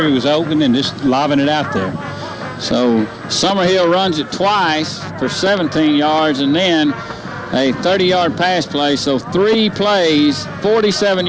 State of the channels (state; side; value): identical; both; correlation 1.00